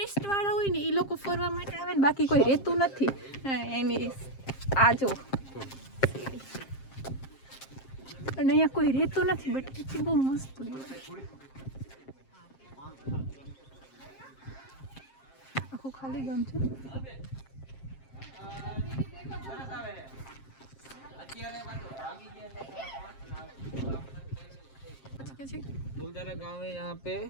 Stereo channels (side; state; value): right; late; 7.5 ms